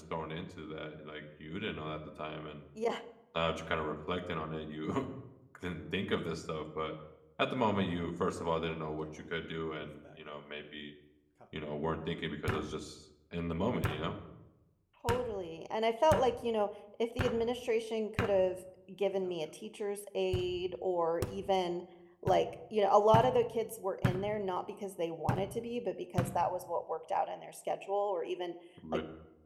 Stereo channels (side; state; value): both; identical; correlation 1.00